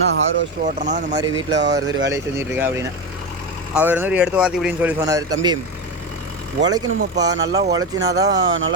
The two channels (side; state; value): both; normal; correlation 0.17